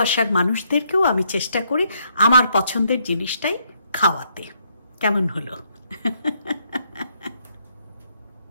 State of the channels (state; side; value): inverted; both; correlation -0.73